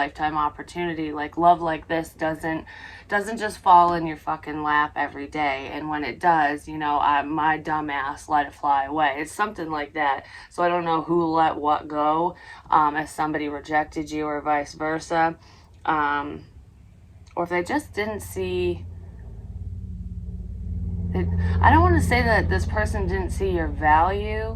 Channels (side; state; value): both; identical; correlation 1.00